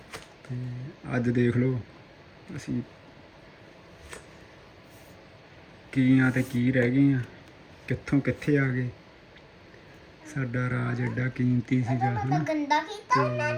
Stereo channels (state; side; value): identical; both; correlation 1.00